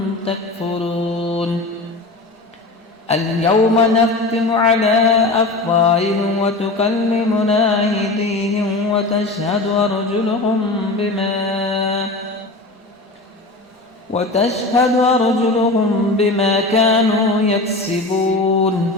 تكفرون اليوم نختم على أفواههم وتكلمنا أيديهم وتشهد أرجلهم بما كانوا يكسبون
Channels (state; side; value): quieter; right; 3.0 dB